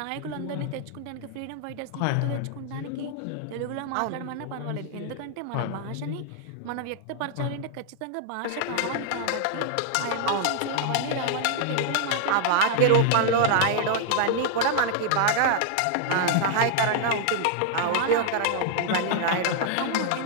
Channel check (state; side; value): different; both; correlation -0.01